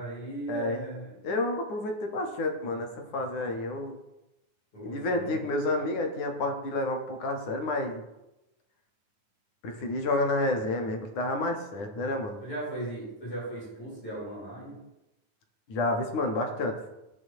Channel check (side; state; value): right; late; 9.7 ms